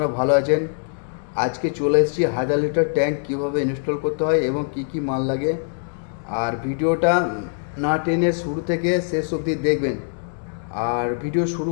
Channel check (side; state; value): right; silent; 64 dB below the other